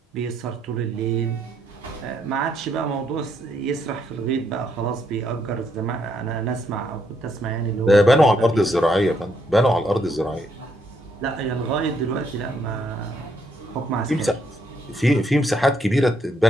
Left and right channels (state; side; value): normal; both; correlation 0.74